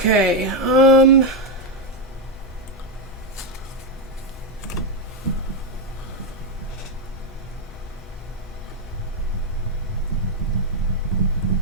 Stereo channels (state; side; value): normal; both; correlation 0.03